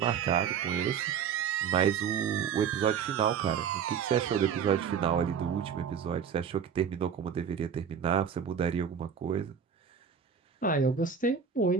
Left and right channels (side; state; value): left; quieter; 7.2 dB